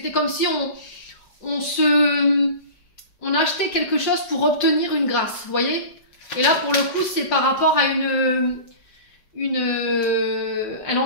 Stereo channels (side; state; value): right; late; 5.6 ms